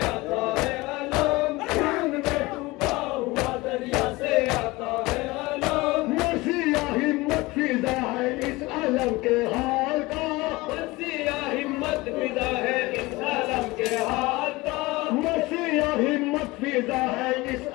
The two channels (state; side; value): quieter; right; 21.6 dB